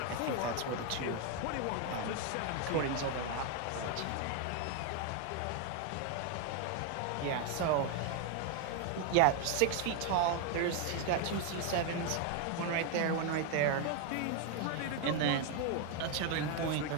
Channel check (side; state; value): both; different; correlation 0.01